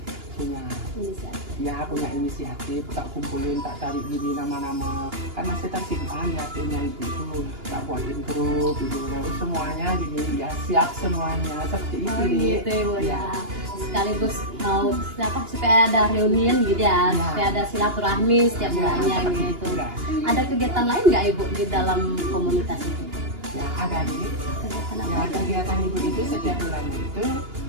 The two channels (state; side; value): late; left; 2.9 ms